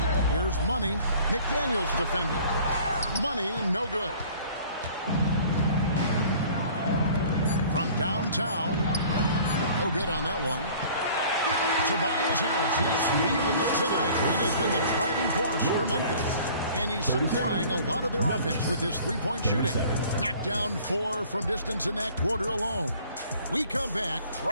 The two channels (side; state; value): both; inverted; correlation -0.50